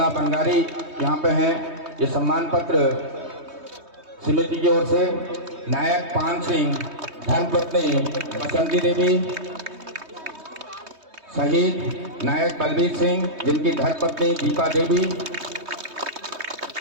बंगारी यहाँ पे हैं, ये सम्मान पत्र समिति की ओर से, नायक पान सिंह, धर्मपत्नी बसंती देवी, शहीद नायक बलबीर सिंह, जिनकी धर्मपत्नी दीपा देवी,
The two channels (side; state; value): left; late; 3.2 ms